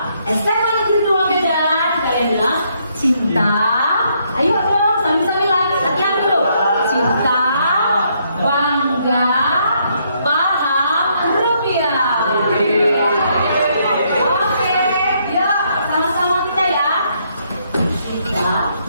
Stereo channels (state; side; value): inverted; both; correlation -0.72